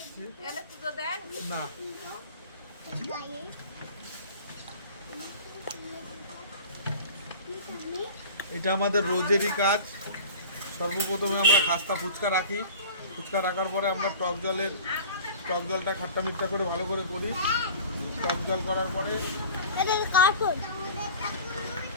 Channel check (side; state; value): both; inverted; correlation -0.40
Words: না। এটা আমাদের রোজেরই কাজ। সর্বপ্রথমে আমরা খাস্তা ফুচকা রাখি। ফুচকা রাখার পরে আমরা টক জলটা খাট্টা মিঠা করে ভালো করে করি। টক জল করার পরে